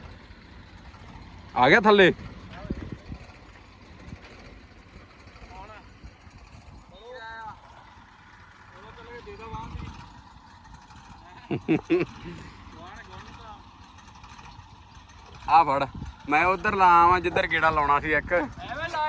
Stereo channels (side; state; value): both; identical; correlation 1.00